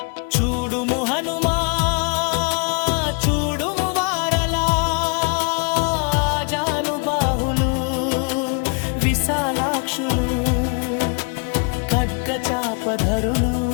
చూడుము హనుమా చూడుము వారలా జానుబాహులు విశాలాక్షులు ఖడ్గ చాపధరులు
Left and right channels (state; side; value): quieter; right; 36.0 dB